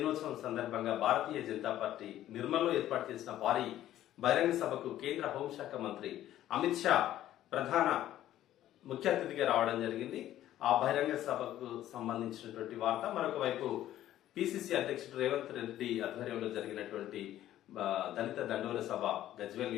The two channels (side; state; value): right; quieter; 12.9 dB